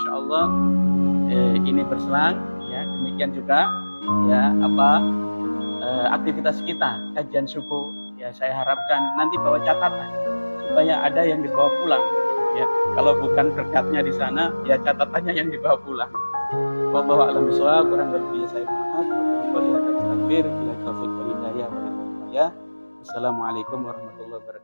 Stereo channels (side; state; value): both; inverted; correlation -1.00